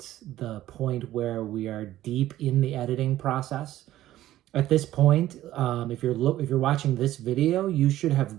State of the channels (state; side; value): quieter; left; 14.1 dB